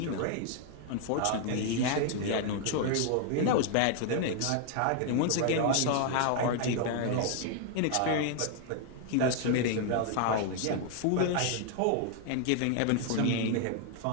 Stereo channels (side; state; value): both; different; correlation 0.00